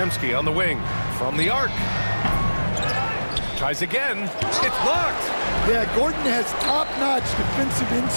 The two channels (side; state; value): both; inverted; correlation -1.00